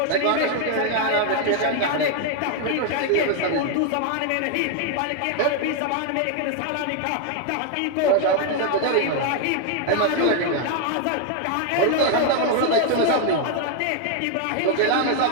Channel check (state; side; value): different; both; correlation 0.00